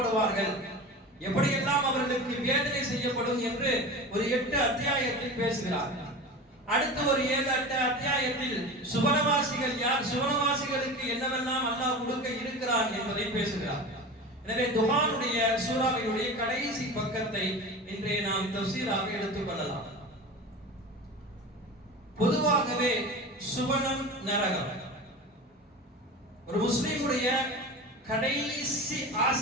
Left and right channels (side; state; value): both; normal; correlation 0.31